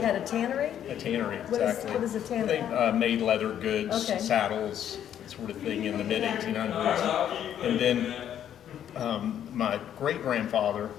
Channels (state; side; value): quieter; right; 10.1 dB